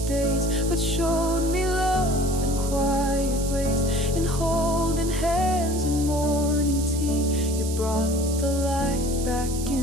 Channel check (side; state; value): right; noise; hiss, 10 dB below the sound